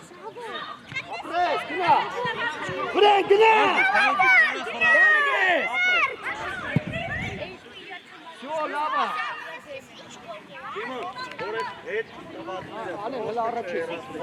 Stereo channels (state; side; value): identical; both; correlation 1.00